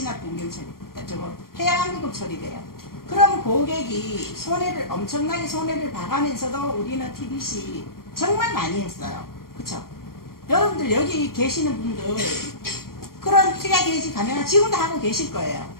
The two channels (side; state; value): right; late; 0.93 ms